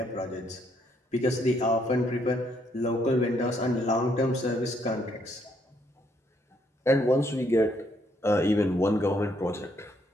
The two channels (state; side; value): normal; both; correlation 0.71